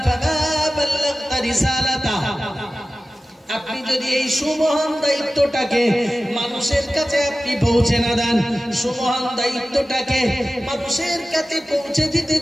ফামা বাল্লাগতা রিসালাতা, আপনি যদি এই সুমহান দায়িত্বটাকে মানুষের কাছে আপনি পৌঁছে না দেন, সুমহান দায়িত্বটাকে মানুষের কাছে পৌঁছে দিতে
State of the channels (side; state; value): both; normal; correlation 0.95